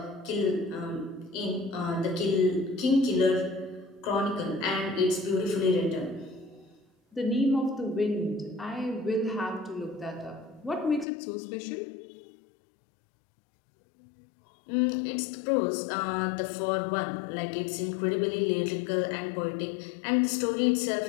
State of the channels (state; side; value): drops out; right; at 11.1 s